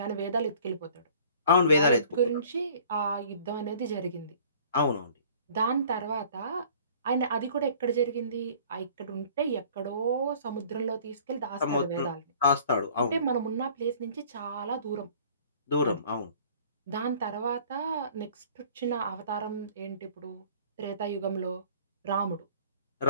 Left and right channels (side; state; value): both; inverted; correlation -0.51